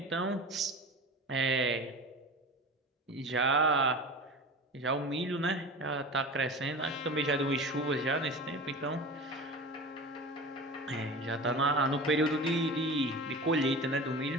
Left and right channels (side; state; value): both; normal; correlation 0.33